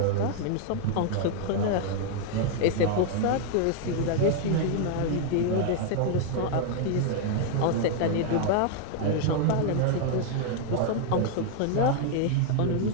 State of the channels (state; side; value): different; both; correlation 0.00